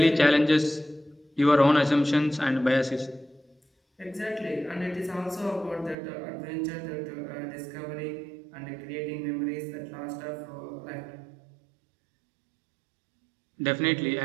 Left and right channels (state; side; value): drops out; left; at 6.0 s